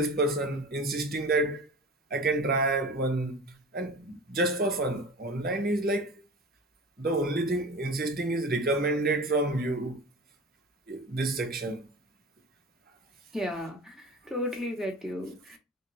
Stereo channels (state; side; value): normal; both; correlation 0.35